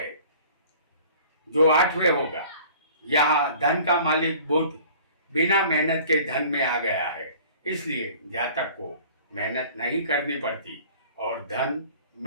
जो 8वें होगा। यहाँ धन का मालिक बुध बिना मेहनत के धन में आ गया है, इसलिए जातक को मेहनत नहीं करनी पड़ती और धन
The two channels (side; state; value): both; inverted; correlation -0.48